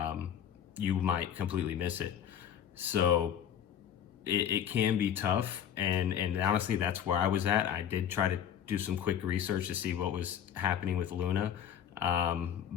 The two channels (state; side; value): quieter; right; 9.2 dB